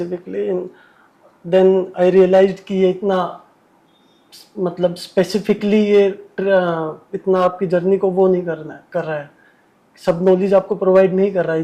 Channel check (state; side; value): identical; both; correlation 1.00